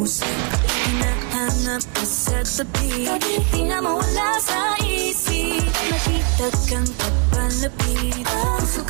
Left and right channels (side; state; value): left; quieter; 35.5 dB